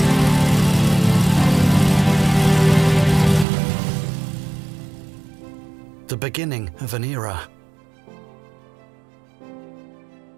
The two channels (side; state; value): left; drops out; at 3.5 s